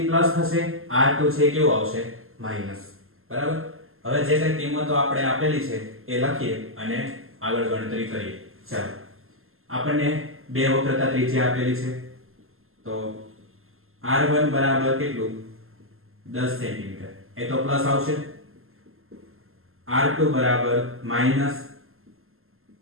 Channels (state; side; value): late; left; 0.61 ms